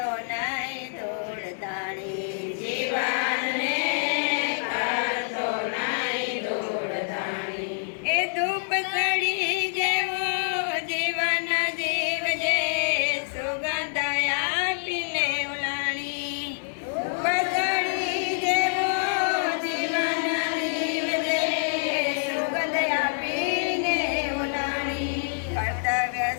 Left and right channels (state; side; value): silent; right; digital silence